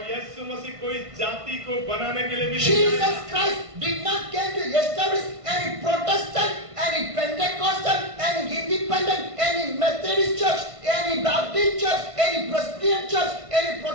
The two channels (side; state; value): left; late; 1.5 ms